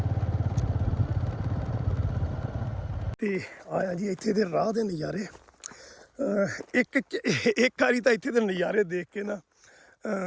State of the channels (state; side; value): identical; both; correlation 1.00